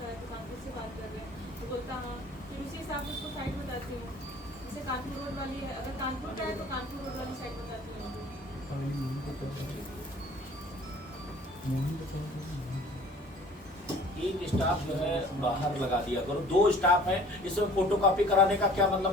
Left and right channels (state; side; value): normal; both; correlation 0.49